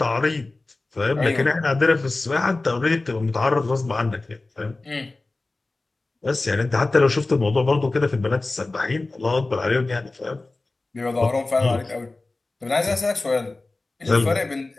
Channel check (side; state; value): right; quieter; 3.2 dB